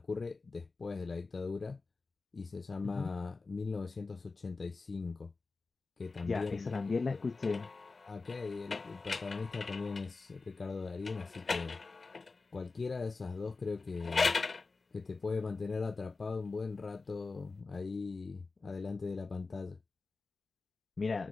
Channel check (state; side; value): quieter; right; 4.0 dB